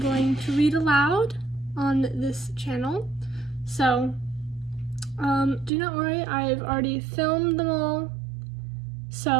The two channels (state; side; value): drops out; left; at 5.7 s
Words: to read aloud on this channel. So do not worry, I've already filmed them all,